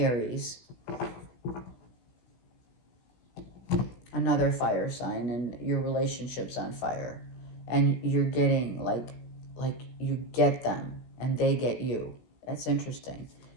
another fire sign, and your relationship's on fire. And you're getting like you get them and they get you. That's interesting.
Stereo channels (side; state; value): right; late; 17 ms